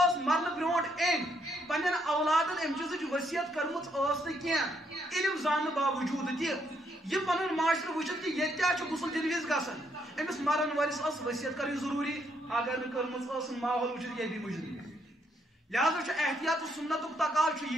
مرنہٕ برونٛٹھ أمۍ پننٮ۪ن اولادن امہِ چیٖزٕچ ؤصیت کٔرمٕژ ٲس نہٕ کینٛہہ علم زاننہٕ باوجوٗد تہِ یہِ پنُن معاشرٕ وٕچھِتھ کہ ییٚتہِ کیٛاہ چھُ غسل دِنہٕ وِزِ گژھان أمِس مرن وٲلِس ٲس ؤصیت کَرٕنۍ ضروٗری اگر نہٕ کٔرمٕژ ٲسٕن ماحول وٕچھِتھ یہِ بھی مُجرم لہذا چھُ احتیاط تہٕ سُنتُک تقاضہٕ چھُ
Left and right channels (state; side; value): normal; both; correlation 0.73